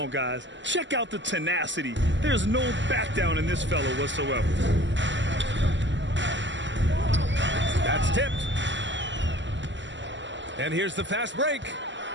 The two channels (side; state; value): left; late; 0.53 ms